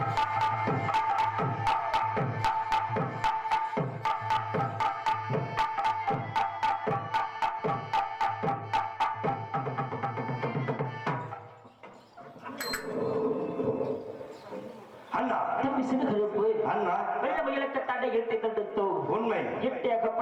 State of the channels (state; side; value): identical; both; correlation 1.00